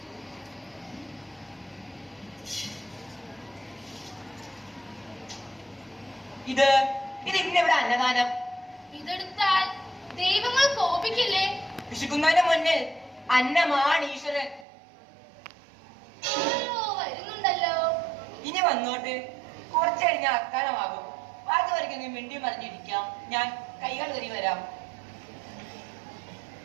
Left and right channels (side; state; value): left; drops out; at 14.7 s